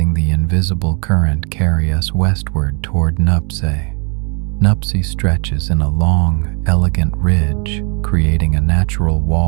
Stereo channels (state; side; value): quieter; left; 35.3 dB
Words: the invisible current carry us westward toward Nuptse. Nuptse stretches in a long, elegant ridge, creating a natural